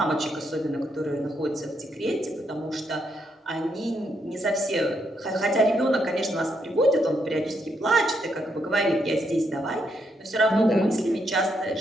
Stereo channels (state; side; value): normal; both; correlation 0.77